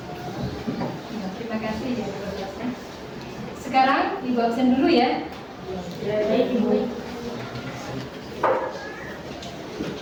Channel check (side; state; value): both; identical; correlation 1.00